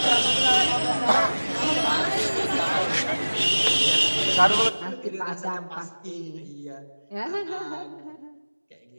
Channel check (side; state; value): both; inverted; correlation -1.00